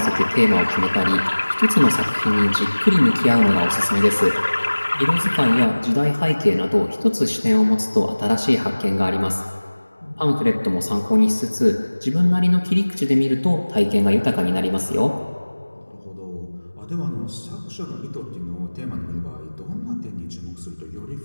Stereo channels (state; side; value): inverted; both; correlation -1.00